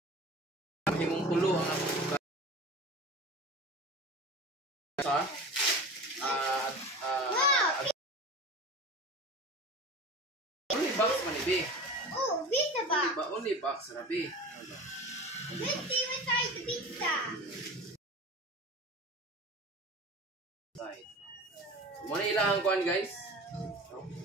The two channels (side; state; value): both; normal; correlation 0.34